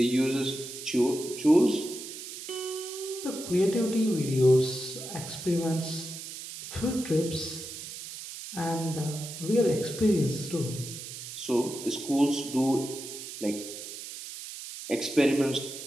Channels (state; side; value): noise; right; hiss, 10 dB below the sound